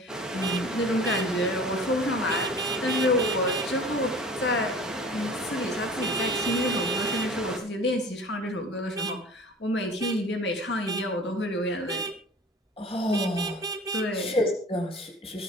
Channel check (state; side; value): normal; both; correlation 0.42